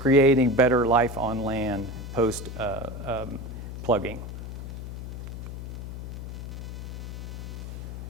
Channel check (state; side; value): noise; left; hum, 8 dB below the sound